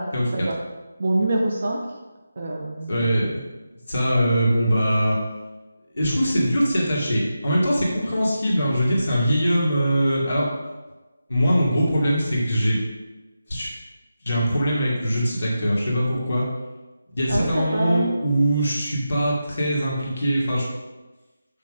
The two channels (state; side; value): inverted; both; correlation -0.89